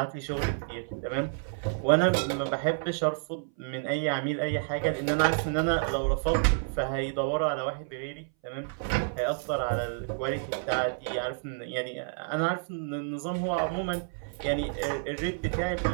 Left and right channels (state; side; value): silent; left; 58 dB below the other